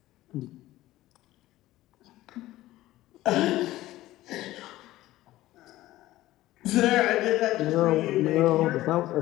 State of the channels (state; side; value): quieter; right; 16.1 dB